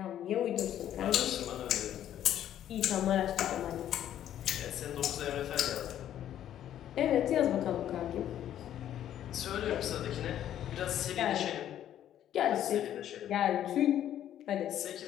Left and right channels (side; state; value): right; quieter; 11.1 dB